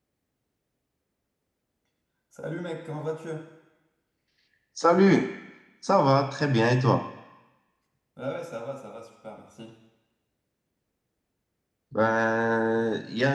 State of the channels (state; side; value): identical; both; correlation 1.00